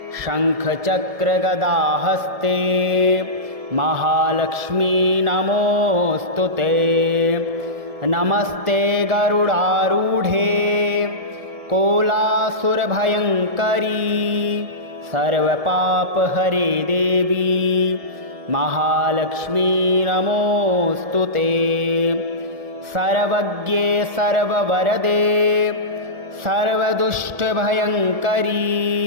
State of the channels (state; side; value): late; left; 1.7 ms